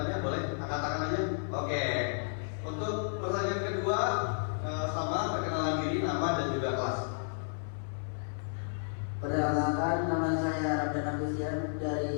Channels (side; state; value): right; silent; 56 dB below the other